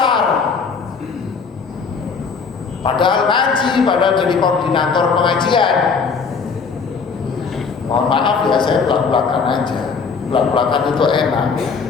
Padahal ngaji, padahal jadi koordinator pengajian. Mohon maaf ya, saya belak-belakan aja. Belak-belakan itu enak.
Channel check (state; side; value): quieter; right; 5.3 dB